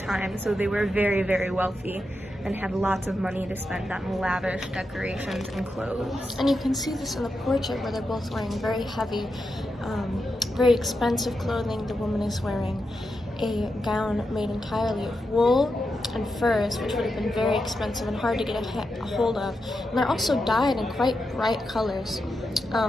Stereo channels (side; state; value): both; normal; correlation 0.87